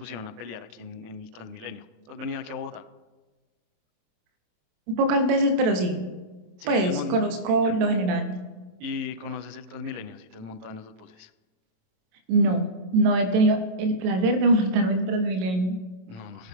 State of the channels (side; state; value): left; late; 27 ms